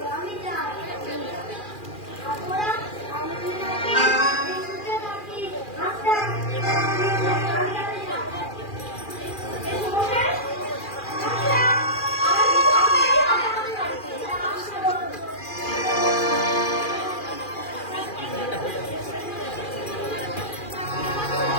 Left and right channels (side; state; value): right; late; 2.4 ms